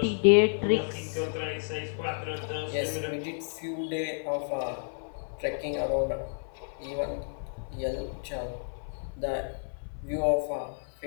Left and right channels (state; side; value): silent; right; 56 dB below the other